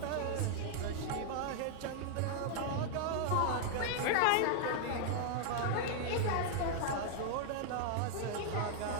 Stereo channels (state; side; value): different; both; correlation 0.00